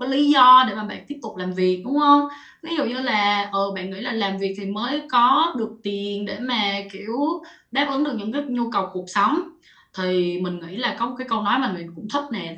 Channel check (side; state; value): both; identical; correlation 1.00